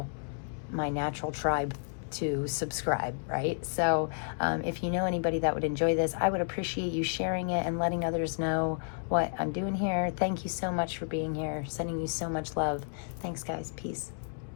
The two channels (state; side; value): silent; right; digital silence